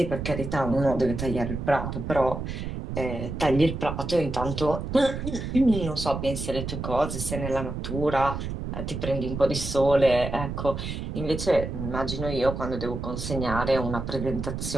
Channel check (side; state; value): right; noise; rumble, 5 dB below the sound